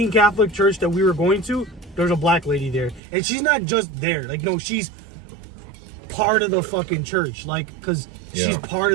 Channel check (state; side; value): drops out; left; at 3.0 s